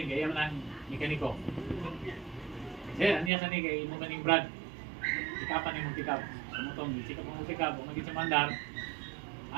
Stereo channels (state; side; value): drops out; left; at 3.3 s